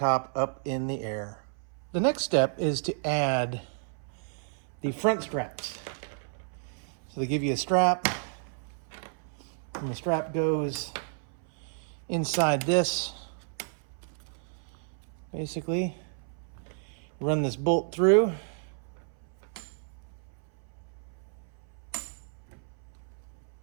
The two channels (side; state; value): left; silent; 57 dB below the other